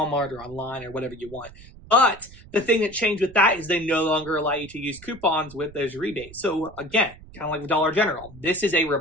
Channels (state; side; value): noise; right; rumble, 20 dB below the sound